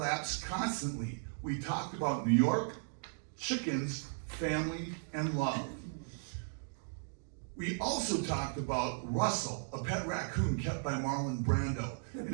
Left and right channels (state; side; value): silent; left; digital silence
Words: constantly. We talked about New York, chickens, family, and love. We also talked about Russell, a pet raccoon kept by Marlon Brando,